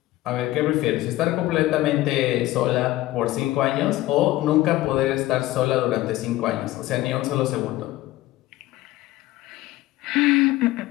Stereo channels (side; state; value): right; quieter; 16.6 dB